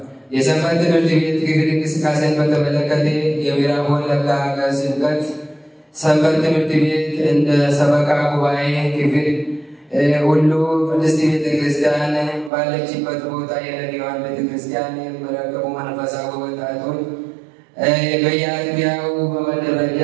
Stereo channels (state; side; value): drops out; left; at 12.5 s